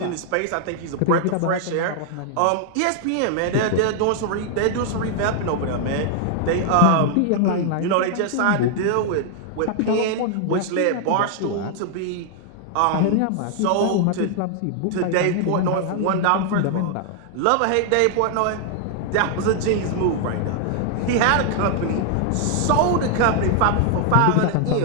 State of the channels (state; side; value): different; both; correlation 0.00